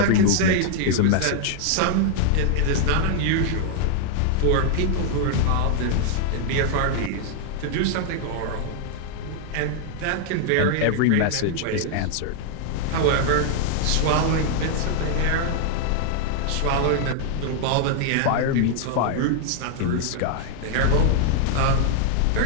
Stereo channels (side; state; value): both; different; correlation 0.00